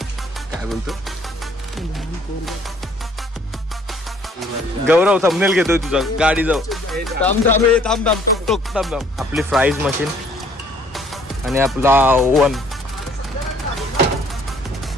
काय बोलतो गौरव थंबनेल घेतोय तुझा. गाडी जाऊ थांब. आपली फ्राईज मशीन आणि आपला ओव्हन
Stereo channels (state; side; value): normal; both; correlation 0.60